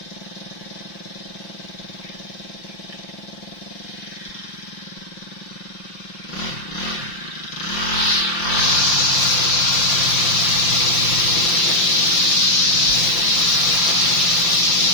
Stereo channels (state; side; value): late; right; 5.8 ms